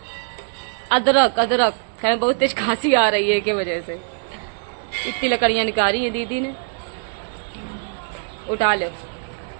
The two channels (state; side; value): silent; left; digital silence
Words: अदरक खाने बहुत तेज खांसी आ रही है के वजह से। इतनी लकड़ियां निकाली है दीदी ने, उठा लो।